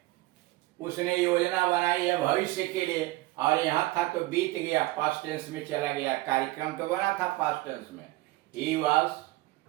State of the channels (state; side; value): quieter; left; 19.3 dB